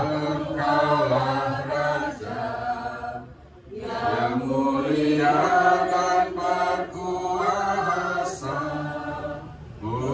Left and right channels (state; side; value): identical; both; correlation 1.00